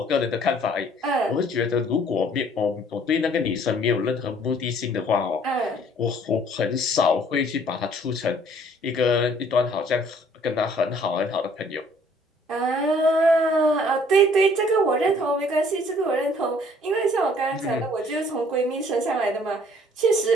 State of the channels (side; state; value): both; normal; correlation 0.58